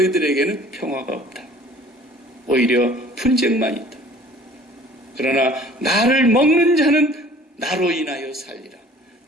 평화가 없다. 오히려 분쟁만 있다. 그러나 나를 먹는 자는 나로 인하여 살리라.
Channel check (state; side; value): normal; both; correlation 0.50